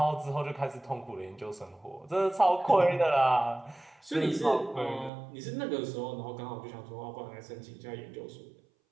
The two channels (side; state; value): left; drops out; at 5.1 s